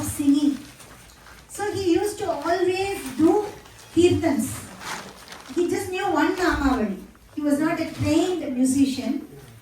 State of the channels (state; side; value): identical; both; correlation 1.00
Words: singing. So he used to always do kirtans. He just knew one Namavali. He was not a trained musician,